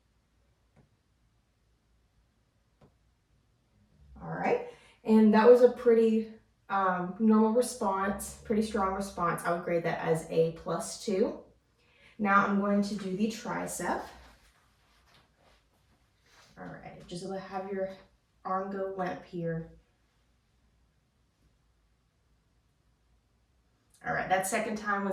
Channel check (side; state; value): both; identical; correlation 1.00